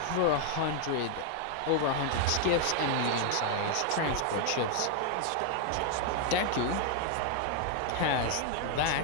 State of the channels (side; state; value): both; different; correlation 0.00